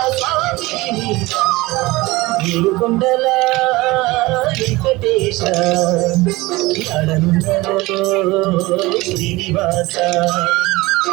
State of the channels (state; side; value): quieter; left; 20.9 dB